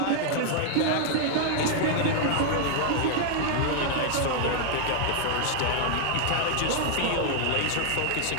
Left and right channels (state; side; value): different; both; correlation 0.00